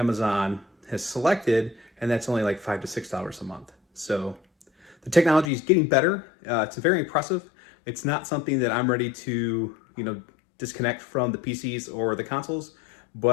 has selected, and that's only like $5 to $6 a month. So the technology is getting better. It's very impressive. It's not something that I'm ready to, you know, disconnect from the PCs or the consoles,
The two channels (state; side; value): drops out; right; at 5.5 s